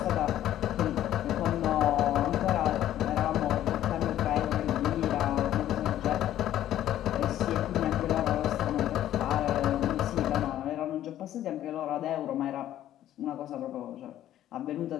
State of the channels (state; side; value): quieter; right; 12.4 dB